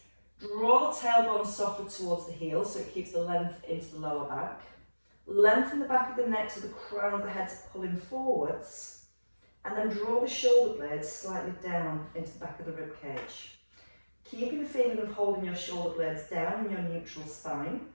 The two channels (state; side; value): inverted; both; correlation -1.00